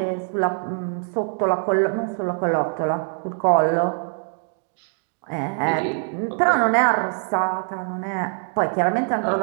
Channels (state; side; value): silent; left; 60 dB below the other